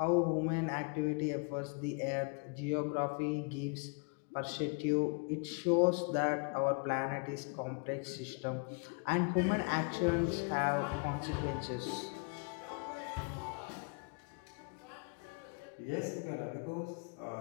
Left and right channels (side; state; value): right; quieter; 34.2 dB